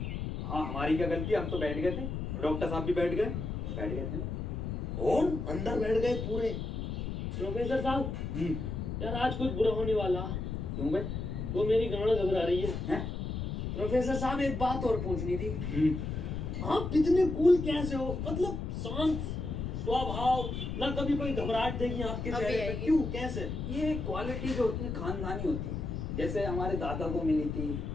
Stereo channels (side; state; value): left; noise; rumble, 4 dB below the sound